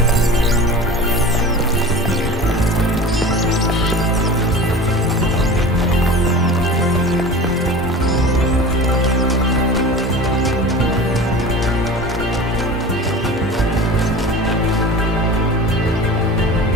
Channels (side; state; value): both; normal; correlation 0.36